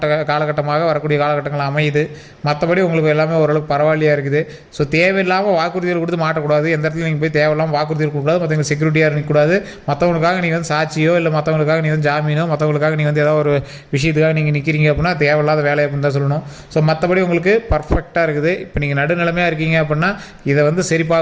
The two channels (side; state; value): both; identical; correlation 1.00